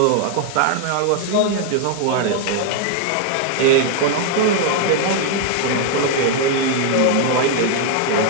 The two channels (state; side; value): different; both; correlation 0.00